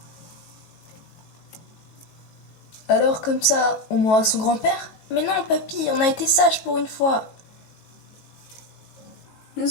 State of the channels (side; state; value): right; late; 18 ms